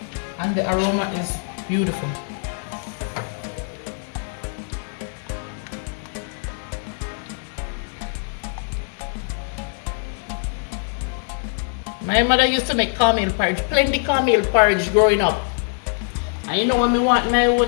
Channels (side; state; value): right; silent; 64 dB below the other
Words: and the aroma is beautiful. My mother used to make cornmeal porridge, plenty cornmeal porridge growing up. And you know when we want my